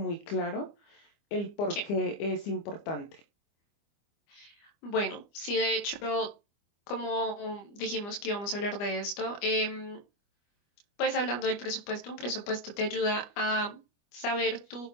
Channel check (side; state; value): right; late; 25 ms